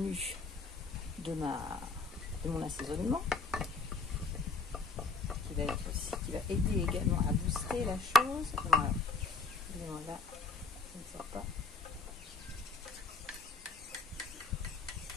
de mon assaisonnement, qui va aider également à booster la chose. Voilà, là, ça ne sort pas.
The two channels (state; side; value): quieter; right; 3.9 dB